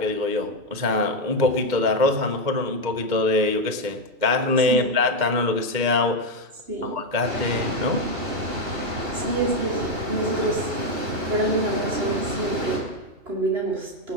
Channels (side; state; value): left; late; 2.2 ms